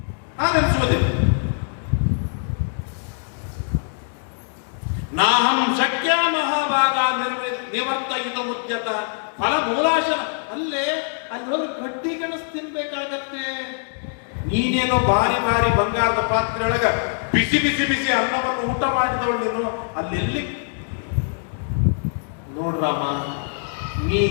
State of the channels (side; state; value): right; silent; 64 dB below the other